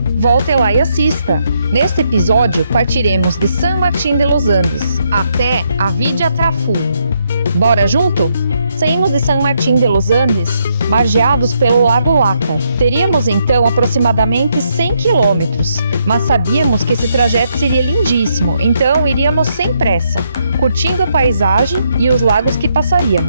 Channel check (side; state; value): both; inverted; correlation -0.76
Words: Volte lá e assista! Neste episódio, partiremos de San Martín de los Andes até a Vidia Trafú. Bora junto? Saímos de San Martín de los Andes, margeados pelo Lago Lácar. Teríamos então aproximadamente 100 quilômetros, mas sabíamos que esse trajeto seria lindíssimo, então iríamos sem pressa, curtindo a paisagem e os lagos que